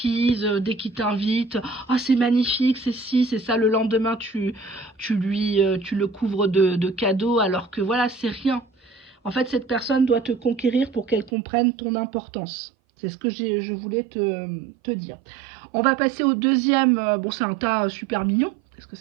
dès qu'il t'invite. Ah, c'est magnifique, c'est ci, c'est ça. Le lendemain, tu le couvres de cadeaux alors que voilà, c'est rien. En fait, cette personne doit te conquérir pour qu'elle comprenne ton importance. C'est ce que je voulais te dire. On va passer au deuxième. Bon, c'est un tas super mignon. Qu'est-ce que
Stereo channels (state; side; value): drops out; left; at 11.3 s